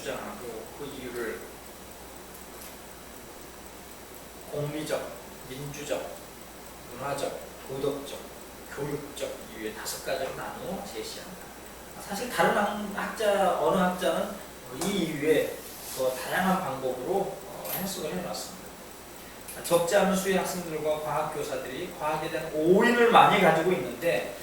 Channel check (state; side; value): identical; both; correlation 1.00